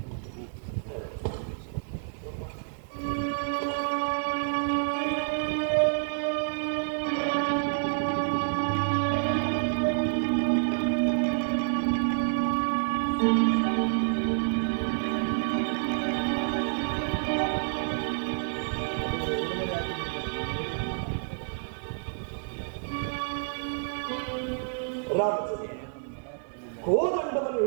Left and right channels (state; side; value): silent; left; digital silence